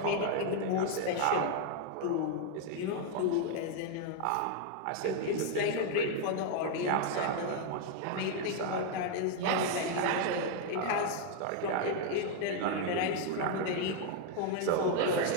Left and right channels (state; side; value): different; both; correlation 0.00